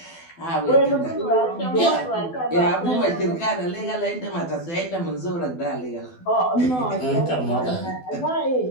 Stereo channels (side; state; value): right; late; 12 ms